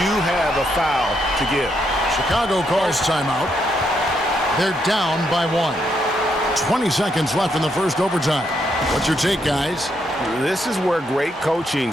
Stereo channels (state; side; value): normal; both; correlation 0.77